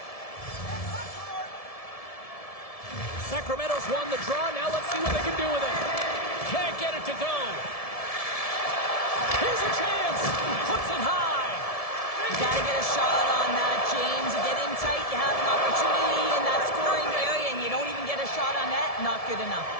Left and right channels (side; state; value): right; late; 1.7 ms